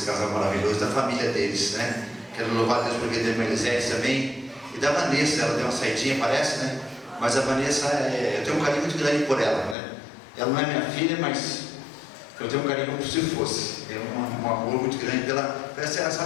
casal maravilhoso, da família deles, né? Quero louvar a Deus por vida da irmã Elisete também, e da Vanessa. Ela deu uma saidinha, parece, né? Mas a Vanessa, eu tenho um carinho muito grande por ela, né? Ela não é minha filha, mas eu tenho um carinho como se fosse. É um amor muito grande pela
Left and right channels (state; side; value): drops out; right; at 9.8 s